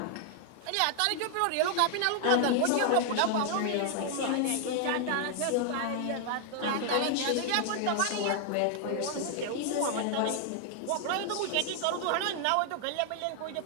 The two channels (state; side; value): different; both; correlation 0.00